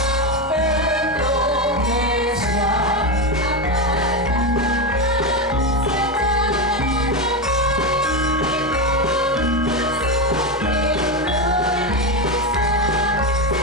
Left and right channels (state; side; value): normal; both; correlation 0.12